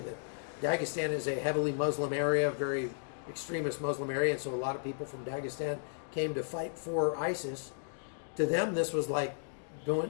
Dagestan is a heavily Muslim area, very extremist Muslim area, and so a lot of people from Dagestan came to fight for ISIS. To them, this was like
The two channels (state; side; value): silent; right; digital silence